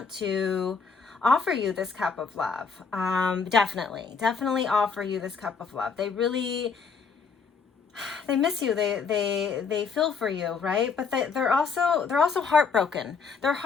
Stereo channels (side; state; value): right; quieter; 5.4 dB